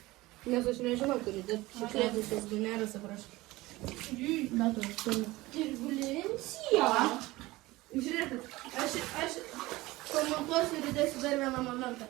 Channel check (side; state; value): left; quieter; 19.6 dB